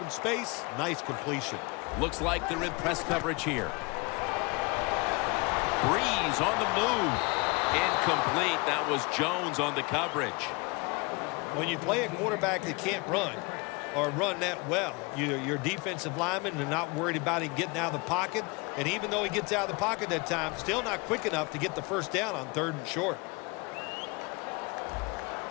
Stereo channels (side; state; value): right; quieter; 27.9 dB